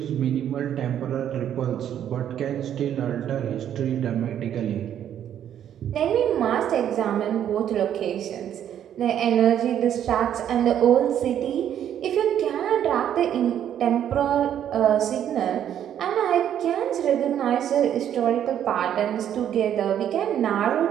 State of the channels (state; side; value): quieter; left; 10.1 dB